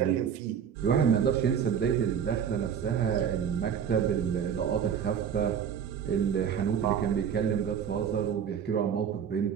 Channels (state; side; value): quieter; left; 8.0 dB